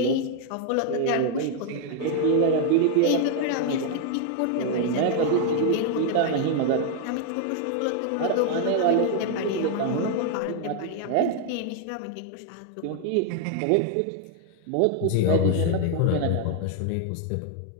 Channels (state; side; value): different; both; correlation 0.00